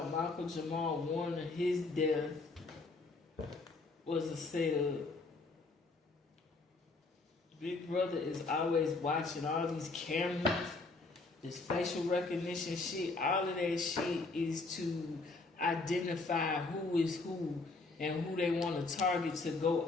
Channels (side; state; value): right; quieter; 3.6 dB